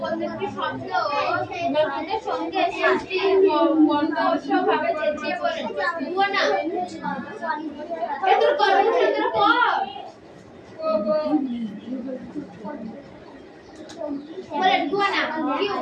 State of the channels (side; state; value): both; identical; correlation 1.00